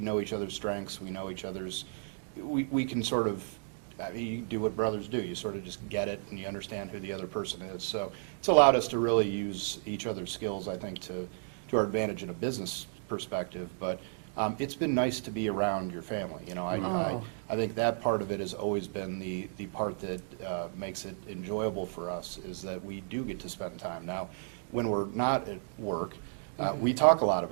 each other's strengths. We know each other's. We can sort of. You do what brothers do. You sort of just get it, and you understand who the other person is. So it's allowed us to really use each other's skills, I think, to our advantage in a business perspective. But it's been nice to be around your family. I think that part of it has always been the part that makes it enjoyable for us, is that we do get to spend time. Now, when we're not at work, we talk a lot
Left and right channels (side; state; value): left; silent; digital silence